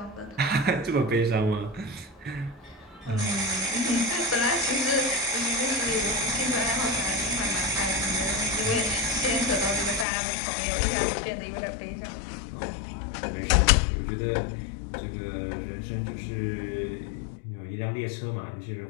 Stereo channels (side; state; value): right; drops out; at 10.1 s